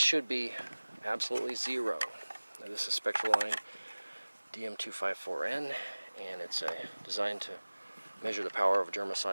be absolutely zero. Now, this is spectral line DM254N, and it's designed to measure the power of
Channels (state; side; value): inverted; both; correlation -1.00